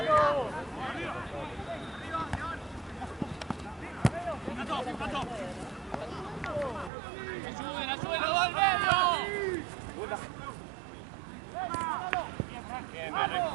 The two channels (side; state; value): left; drops out; at 6.9 s